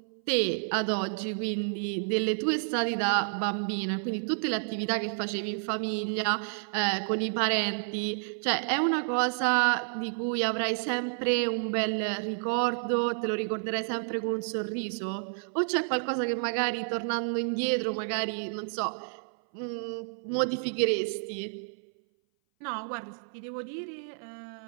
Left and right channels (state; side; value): silent; left; 58 dB below the other